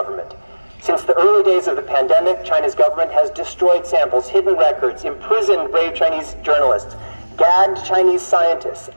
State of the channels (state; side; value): inverted; both; correlation -1.00